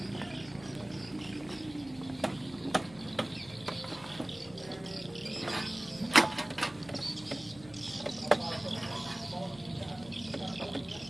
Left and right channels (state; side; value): noise; left; hum, 20 dB below the sound